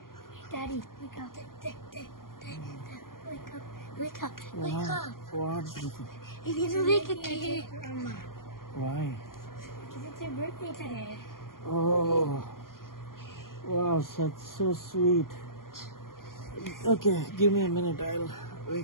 Daddy, wake up. Wake up. Wake up. Wake up. What? You need to make a cake. Why? Because it's your birthday today. Oh, wow, that's so sweet. Okay, give me a minute. I'll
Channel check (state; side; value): late; right; 0.91 ms